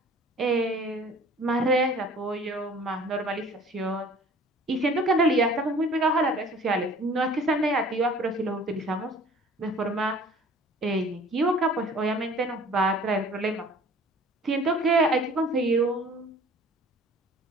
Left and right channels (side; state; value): both; normal; correlation 0.49